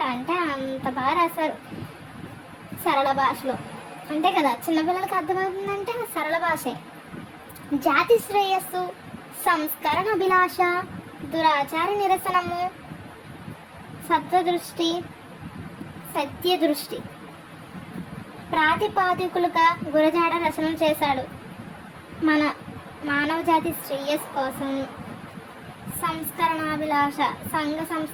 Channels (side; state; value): both; identical; correlation 1.00